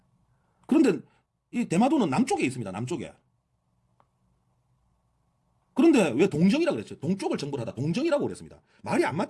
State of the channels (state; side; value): identical; both; correlation 1.00